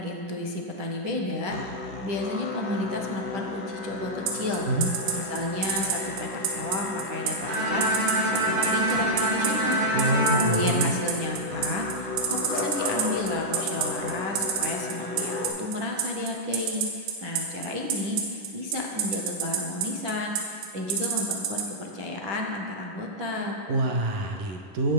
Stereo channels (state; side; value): late; left; 10 ms